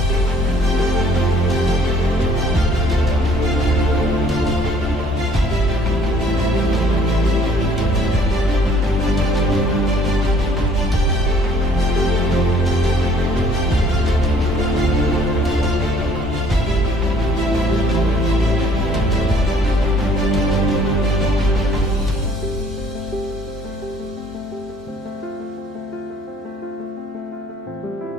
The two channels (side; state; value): both; normal; correlation 0.58